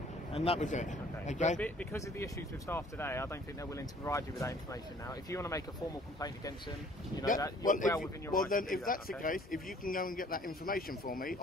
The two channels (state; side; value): normal; both; correlation 0.56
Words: And that was it. Okay. But because of the issues with staff today, I don't think they're willing to provide you with that information now. If you want to make a formal complaint against them, you know that you're well within your rights. Well, then, if that's the case, if you can go and get that information for me